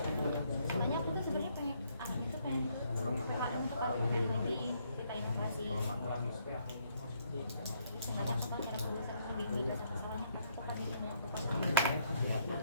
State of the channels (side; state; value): both; inverted; correlation -0.70